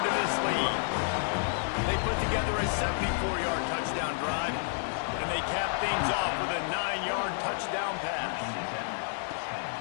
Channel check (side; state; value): right; silent; digital silence